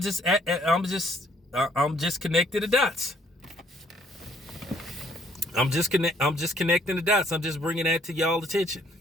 connecting the dots. I'm just connecting the dots. I'm just bringing that to y'all attention.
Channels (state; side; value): normal; both; correlation 0.64